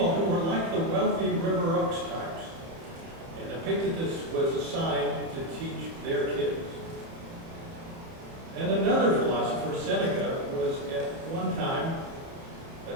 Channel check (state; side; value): late; left; 30 ms